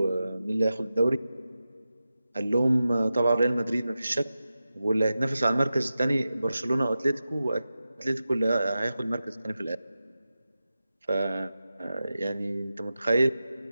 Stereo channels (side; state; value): both; inverted; correlation -0.93